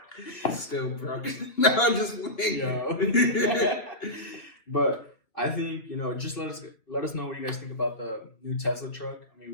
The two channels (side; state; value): right; late; 3.1 ms